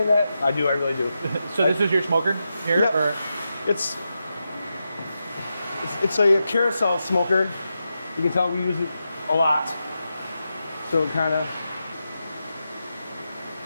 that. I really do. So this is your smoker here? Yeah. Or? It's a carousel smoker. You can tell we use it a lot. So it kind of.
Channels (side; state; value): both; inverted; correlation -0.88